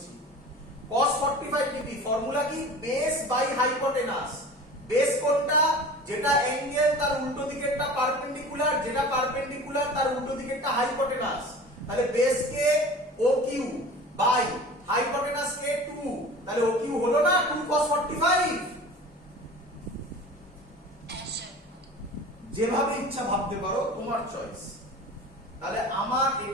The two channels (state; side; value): normal; both; correlation 0.39